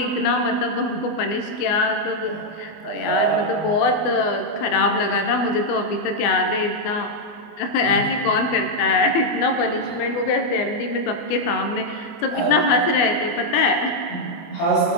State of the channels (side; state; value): right; late; 24 ms